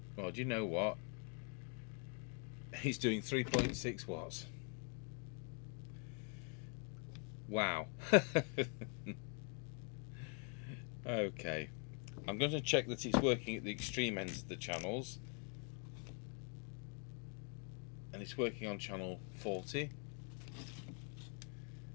Well, do you know what? He's doing 3.6 watts. Wow. Okay. I'm going to check that it's working at the extreme ends of the channels. And it's working on channel 40.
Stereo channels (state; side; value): quieter; right; 35.8 dB